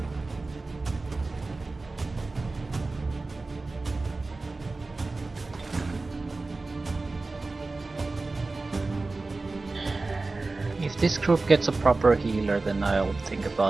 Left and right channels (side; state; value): left; quieter; 3.5 dB